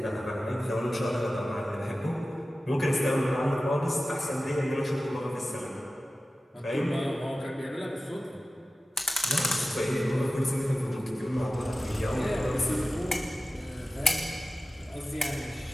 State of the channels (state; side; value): normal; both; correlation 0.95